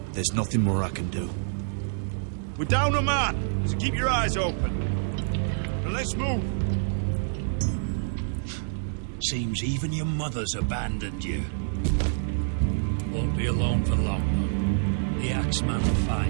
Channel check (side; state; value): left; silent; digital silence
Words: There's nothing more I can do. We're down a man, so keep your eyes open. And let's move. Seems even your mother's abandoned you. Won't be alone for long, though. The Axeman will